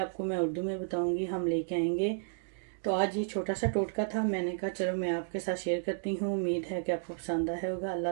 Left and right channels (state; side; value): silent; left; digital silence